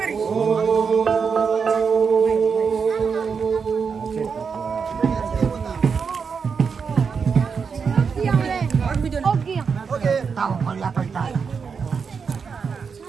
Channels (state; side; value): quieter; left; 5.8 dB